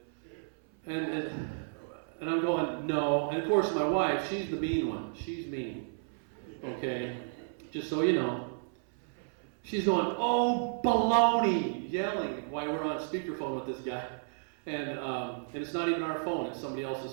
And I'm going, no. And of course, my wife, she's the mean one. She's mean. Okay? Just so you know. She's going, oh, baloney, yelling while we're on speakerphone with this guy. And it's not even our phone, it's somebody else's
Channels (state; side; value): silent; left; 56 dB below the other